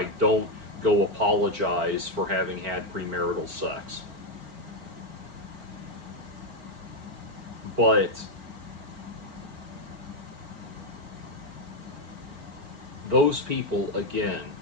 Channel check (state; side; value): late; left; 4.4 ms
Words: don't go apologize for having had premarital sex. But those people, again,